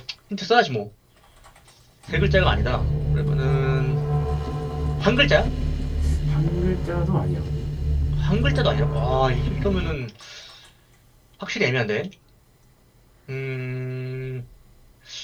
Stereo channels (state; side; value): identical; both; correlation 1.00